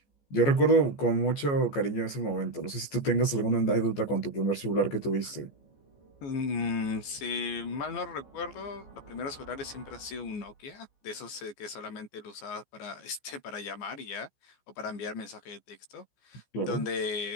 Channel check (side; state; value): right; late; 14 ms